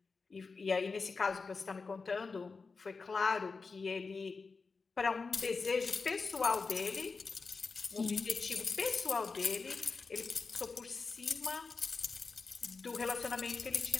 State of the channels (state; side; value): quieter; right; 4.5 dB